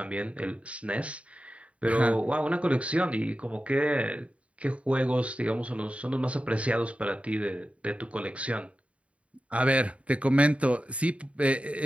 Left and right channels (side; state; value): left; late; 0.063 ms